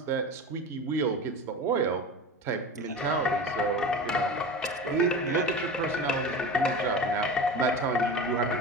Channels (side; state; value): both; normal; correlation 0.31